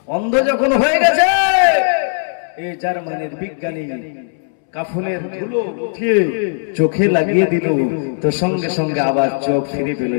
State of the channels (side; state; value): right; silent; 68 dB below the other